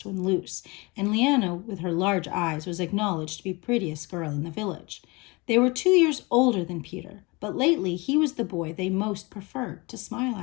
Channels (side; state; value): right; quieter; 25.8 dB